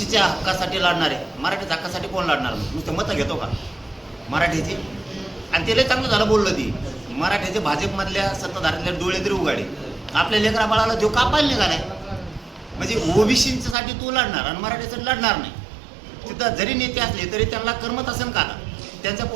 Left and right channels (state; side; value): drops out; left; at 13.8 s